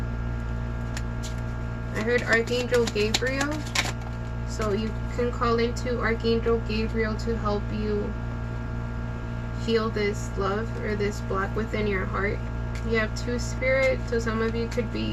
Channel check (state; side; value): identical; both; correlation 1.00